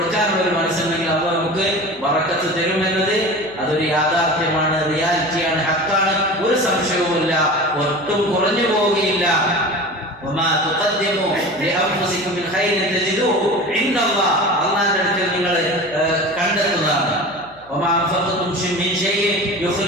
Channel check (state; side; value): noise; left; hum, 27 dB below the sound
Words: ഒരു മനസ്സുണ്ടെങ്കിൽ അത് നമുക്ക് ബറക്കത്ത് തരുമെന്നത് അതൊരു യാഥാർത്ഥ്യമാണ്, റിയാലിറ്റിയാണ്, ഹക്കാണ്, ഒരു സംശയവുമില്ല, ഒട്ടും കുറഞ്ഞു പോവുകയില്ല. അള്ളാന്റെ അടുക്കൽ നിങ്ങൾ കണ്ടെത്തുന്നതാണ്.